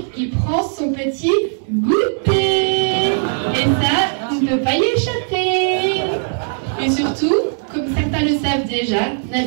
il prend son petit goûter. Et ça, on ne peut pas y échapper. Et surtout, comme certains le savent déjà,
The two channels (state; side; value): silent; left; digital silence